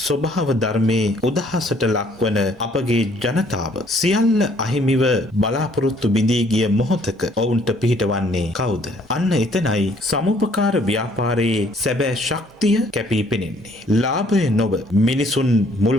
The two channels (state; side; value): normal; both; correlation 0.62